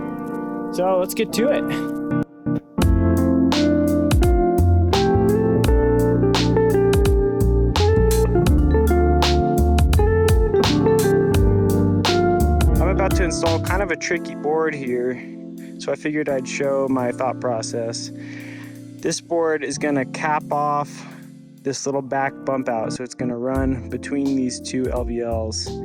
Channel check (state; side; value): identical; both; correlation 1.00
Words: So let's get to it. I'm about to install kind of a tricky board here, so I figured I'd show my thought process. This board is gonna cap off this little back bump out, so it's gonna run between these two LVLs.